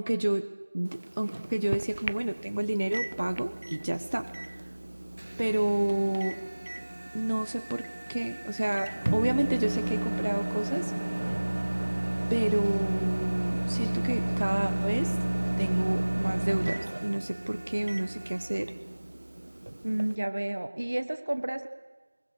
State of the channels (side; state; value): both; inverted; correlation -1.00